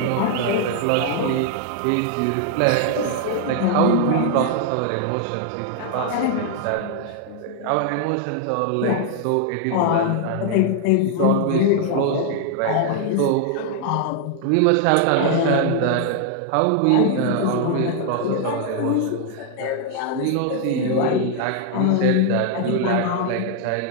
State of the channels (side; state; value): both; different; correlation 0.00